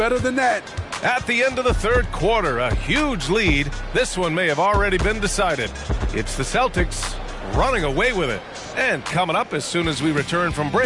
than that. At the end of the third quarter, a huge lead. This one may have already been decided. It's the Celtics running away with it. And coming up as soon as we return from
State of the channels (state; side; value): identical; both; correlation 1.00